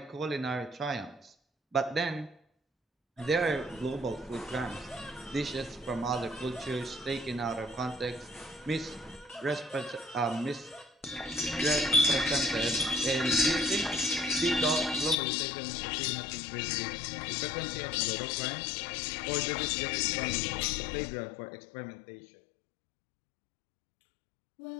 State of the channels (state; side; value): drops out; right; at 15.2 s